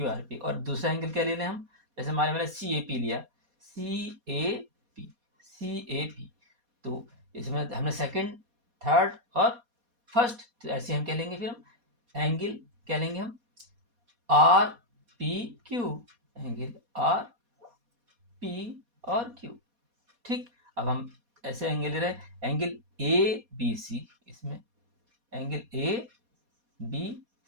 R P. और दूसरा एंगल क्या ले रहे हैं हम? जैसे हमारे मैंने सी ए पी लिया, सी A P, C A P, तो इसमें हमने सेकंड, थर्ड और फर्स्ट, तो ऐसे हम क्या लेंगे फिर? हम एंगल क्या लेंगे? हम are P Q, angle R P और क्यू, ठीक। अब हम ऐसे एंगल ले रहे हैं, एंगल ए बी सी, इसमें एंगल ए बी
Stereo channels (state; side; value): late; left; 4.2 ms